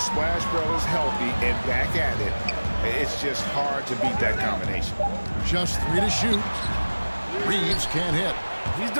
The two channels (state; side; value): inverted; both; correlation -1.00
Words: Brothers healthy and back at it, it's just hard to beat that combination. Just 3 to shoot. Reeves can't hit. He's